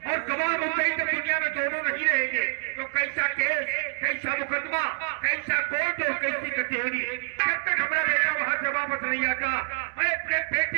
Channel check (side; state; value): left; silent; digital silence